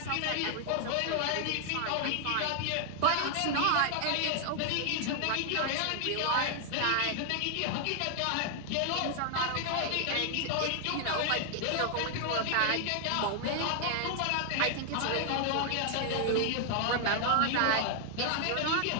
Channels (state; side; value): different; both; correlation 0.00